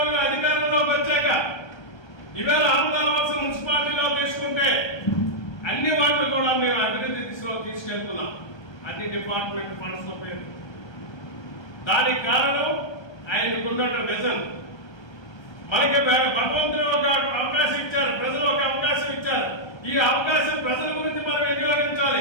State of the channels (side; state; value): right; late; 1.2 ms